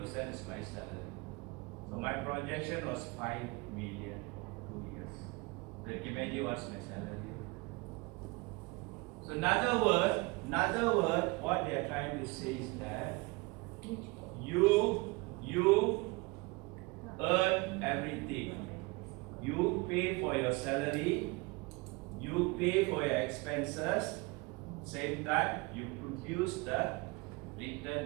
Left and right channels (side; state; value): left; quieter; 25.7 dB